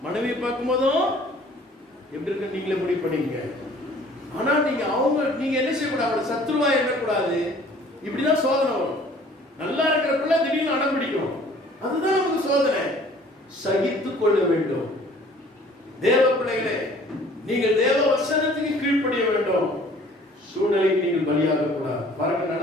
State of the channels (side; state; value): both; normal; correlation 0.53